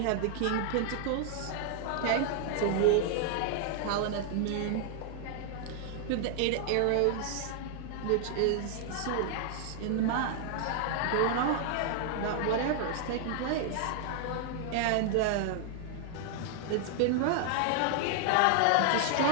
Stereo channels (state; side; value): different; both; correlation 0.00